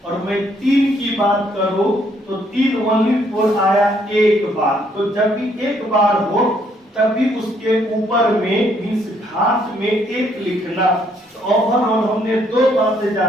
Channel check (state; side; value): normal; both; correlation 0.69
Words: और मैं 3 की बात करूं तो 3 ओनली 4 आया 1 बार। तो जब भी 1 बार हो तभी उसके ऊपर में मीन्स घात में 1 लिखना। तो ओवरऑल हमने 2 बातें